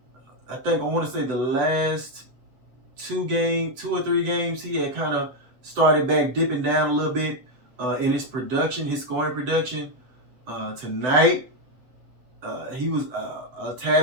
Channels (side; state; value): left; late; 7.9 ms